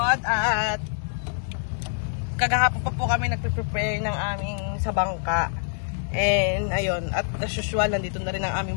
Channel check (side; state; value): right; silent; digital silence